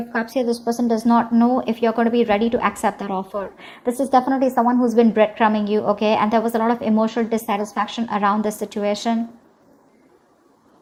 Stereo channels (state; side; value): identical; both; correlation 1.00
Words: Cups here, this person does not know if you're going to be ready to accept that offer. This is definitely someone who's been breadcrumbing you, okay? And there was a lot of emotional dissatisfaction around this situation.